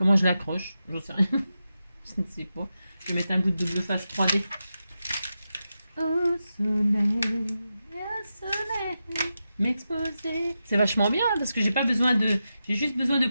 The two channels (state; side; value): inverted; both; correlation -0.89